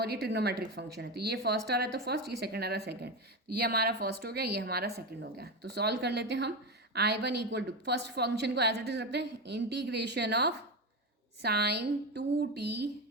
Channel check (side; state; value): both; normal; correlation 0.16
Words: ये ट्रिग्नोमेट्रिक फंक्शन है, तो ये फर्स्ट आ रहा है तो फर्स्ट, ये सेकंड आ रहा है सेकंड, तो ये हमारा फर्स्ट हो गया, ये हमारा सेकंड हो गया। तो सॉल्व कर लेते हैं हम। I1 equal to first function को एज इट इज रखते हैं, integration of sine 2t